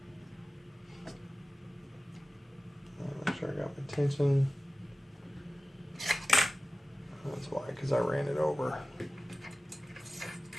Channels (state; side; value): normal; both; correlation 0.97